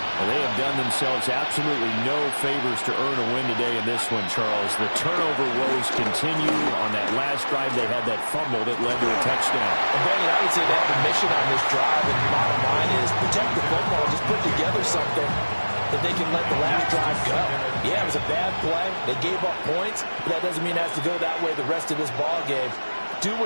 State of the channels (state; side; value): inverted; both; correlation -1.00